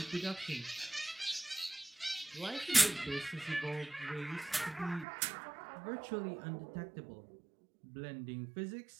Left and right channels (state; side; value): drops out; left; at 5.1 s